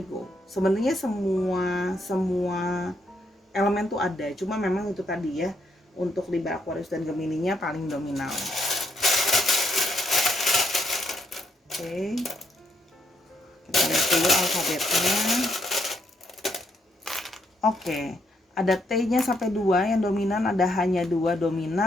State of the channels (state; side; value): normal; both; correlation 0.75